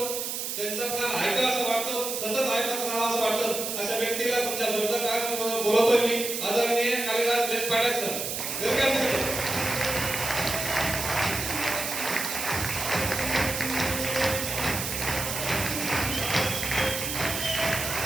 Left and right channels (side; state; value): right; noise; hiss, 3 dB below the sound